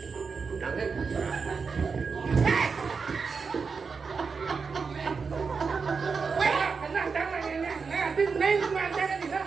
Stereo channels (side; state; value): left; quieter; 5.2 dB